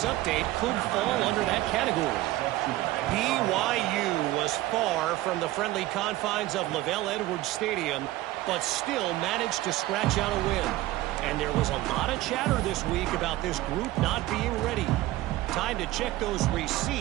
update could fall under that category. BYU was far from the friendly confines of Lavelle Edwards Stadium, but still managed to scratch out a win. And there was a lot of chatter this week about this group not being ready. Time to check those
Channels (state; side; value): quieter; left; 16.9 dB